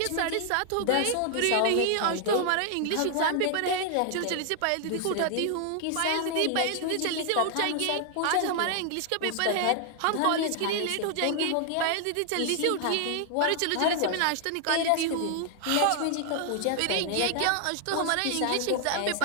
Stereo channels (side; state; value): both; different; correlation 0.00